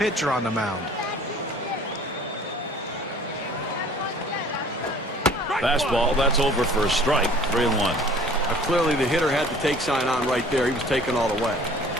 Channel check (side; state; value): both; normal; correlation 0.50